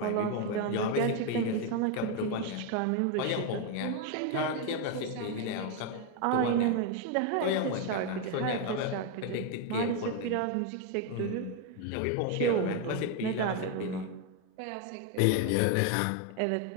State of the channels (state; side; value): different; both; correlation 0.01